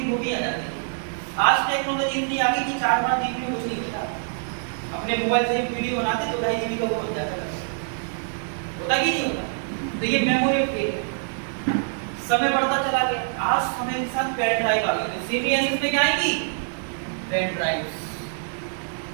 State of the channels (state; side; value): silent; left; digital silence